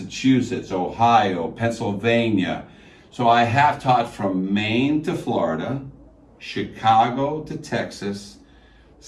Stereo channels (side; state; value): both; identical; correlation 1.00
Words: Ohio, Pennsylvania. So I have taught from Maine to Florida, Chicago to Texas,